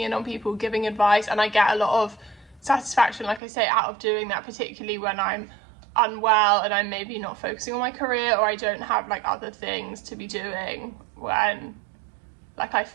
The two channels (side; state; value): left; drops out; at 3.4 s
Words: in on people, giving advice, and I get a lot of satisfaction, like I say, out of doing that, particularly when I'm unwell and I'm maybe not focusing on my career, or I don't have like other things to be doing, when like I